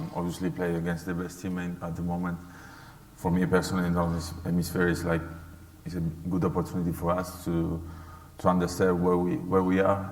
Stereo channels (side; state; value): both; identical; correlation 1.00